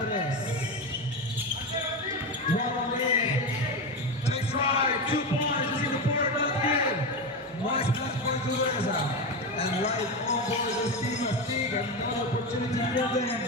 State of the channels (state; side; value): normal; both; correlation 0.17